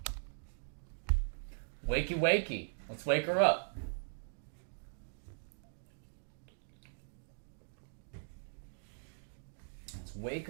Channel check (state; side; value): silent; left; digital silence